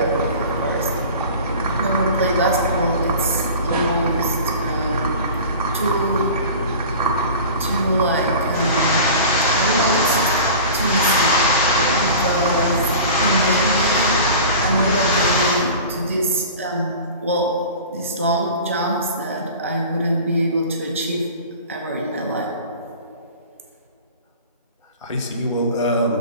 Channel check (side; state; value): both; inverted; correlation -0.38